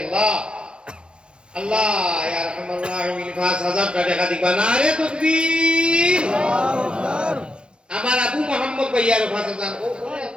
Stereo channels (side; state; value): left; late; 0.053 ms